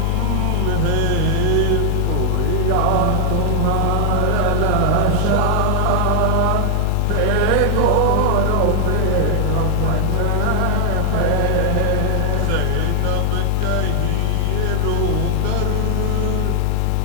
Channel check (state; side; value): different; both; correlation 0.00